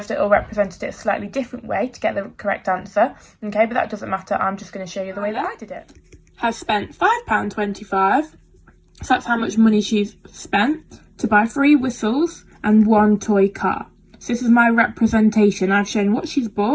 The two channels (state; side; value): identical; both; correlation 1.00